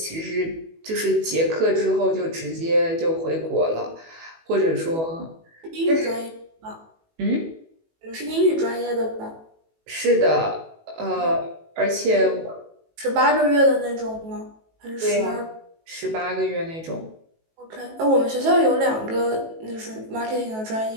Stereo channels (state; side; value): late; left; 18 ms